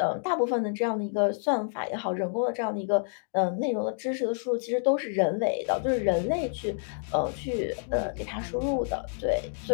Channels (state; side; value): silent; right; digital silence